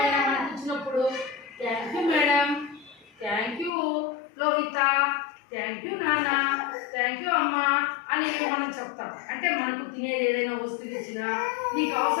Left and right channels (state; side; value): drops out; right; at 3.7 s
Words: మనకి ఇచ్చినప్పుడు thank you madam, thank you Lohita, thank you నాన్న, థ్యాంక్ యూ అమ్మ అని మనం చెప్తాం. అంటే మనకు తినేది ఏదైనా వస్తువు ఇచ్చినా, నీకు